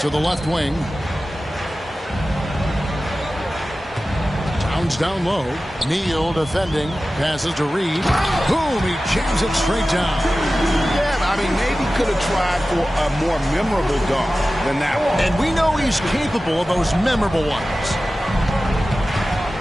the left wing. Towns down low. Neal defending. Passes to Reed. Boom! He jams it straight down. Yeah, I mean, maybe could have tried for a more memorable dunk than that one. And we know he's capable of those memorable ones.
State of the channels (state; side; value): normal; both; correlation 0.95